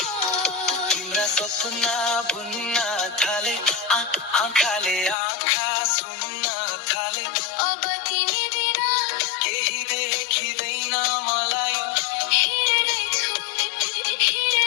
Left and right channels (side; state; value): right; drops out; at 5.2 s